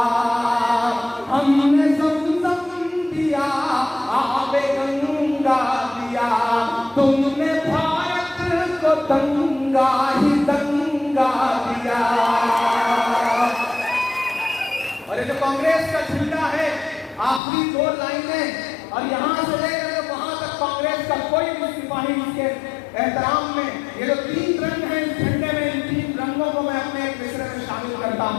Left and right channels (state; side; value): drops out; right; at 17.4 s